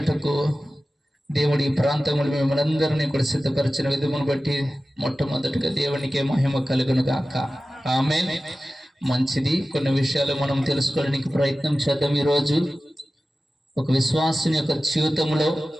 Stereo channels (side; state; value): both; normal; correlation 0.95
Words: దేవుడి ఈ ప్రాంతంలో మిమ్మల్ని అందరినీ కూడా సిద్ధపరిచిన విధమును బట్టి మొట్టమొదటిగా దేవునికే మహిమ కలుగును గాక. ఆమేన్. మంచిది. కొన్ని విషయాలు మనం తెలుసుకోవడానికి ప్రయత్నం చేద్దాం. ఈరోజు ఒక విశ్వాసం యొక్క